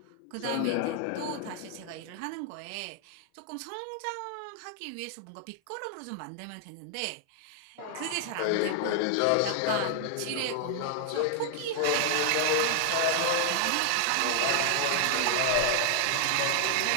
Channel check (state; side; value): different; both; correlation 0.00